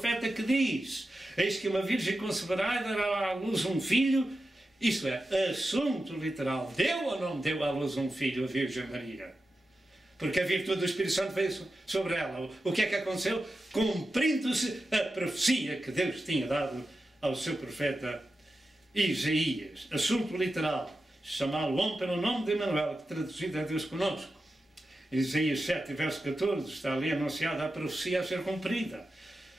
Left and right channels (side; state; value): both; normal; correlation 0.91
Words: que diz, eis que uma virgem conceberá e dará à luz um filho. Isto é, assunto literal. Deu ou não deu à luz um filho, a Virgem Maria? Porque a virtude do Espírito Santo veio sobre ela. O que é que aconteceu? Cumprindo-se a profecia que Deus tinha dado ao seu profeta Isaías. Assunto literal. Chamá-lo homem pelo nome de Emanuel, que traduzido é Deus conosco. Isaías 7, verso 14, está ali anunciada a profecia a ser cumprida.